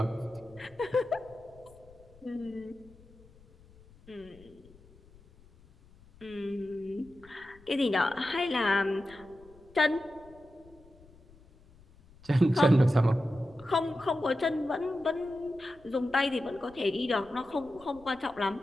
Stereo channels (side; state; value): left; noise; rumble, 25 dB below the sound